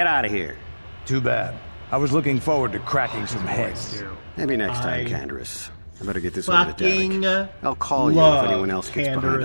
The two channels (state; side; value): inverted; both; correlation -1.00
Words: out of here. Too bad. I was looking forward to cracking some heads. Maybe next time, Canderous. I better get this over to Fucking Derek. I'll call you if anyone else gets behind on